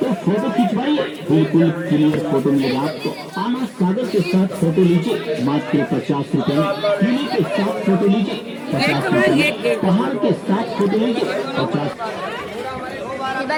फोटो खिंचवाइए, बिल्कुल क्लियर फोटो मिलेगा आपको। आना सागर के साथ फोटो लीजिए मात्र 50 रुपए में। किले के साथ फोटो लीजिए 50 रुपए। पहाड़ के साथ फोटो लीजिए 50।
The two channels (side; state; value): both; identical; correlation 1.00